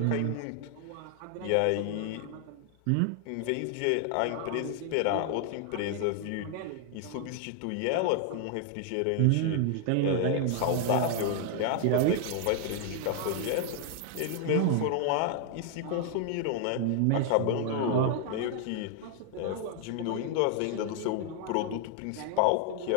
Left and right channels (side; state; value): both; different; correlation 0.00